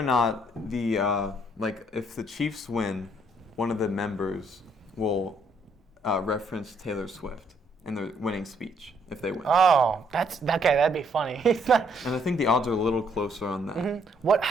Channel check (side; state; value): both; normal; correlation 0.69